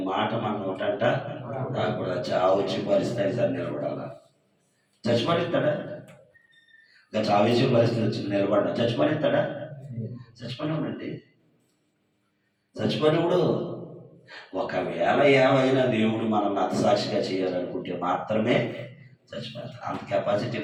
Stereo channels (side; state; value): both; identical; correlation 1.00